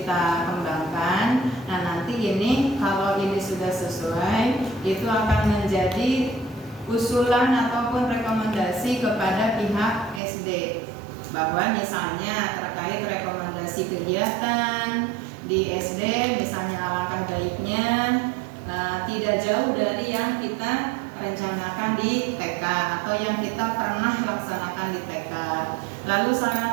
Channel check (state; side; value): drops out; left; at 10.2 s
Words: kembangkan. Nah, nanti ini kalau ini sudah sesuai, itu akan menjadi usulan ataupun rekomendasi kepada pihak SD, bahwa misalnya terkait rekomendasi kegiatan di SD, misalnya alangkah baiknya tidak jauh dari yang kita rencanakan di TK atau yang kita pernah laksanakan di TK. Lalu